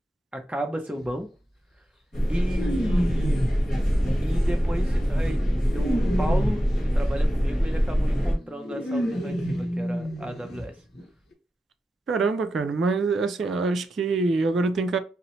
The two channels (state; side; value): normal; both; correlation 0.90